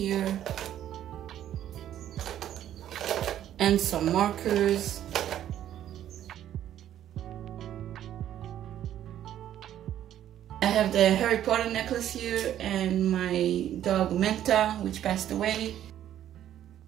and some markers. I have the Harry Potter necklace here and my dog Menta, which passed away.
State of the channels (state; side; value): quieter; left; 11.3 dB